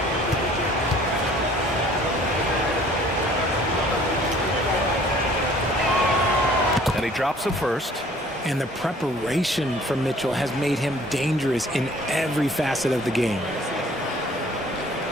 And he drops the first. And the preparation from Mitchell has made him dangerous in every facet of the game.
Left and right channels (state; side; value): normal; both; correlation 0.53